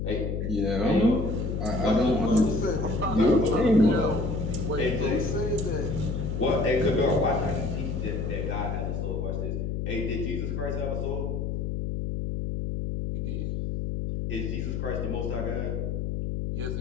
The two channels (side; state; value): left; noise; hum, 2 dB below the sound